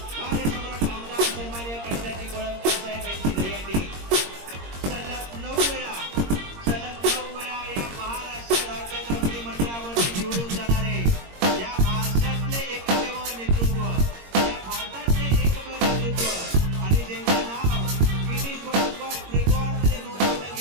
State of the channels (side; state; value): left; late; 22 ms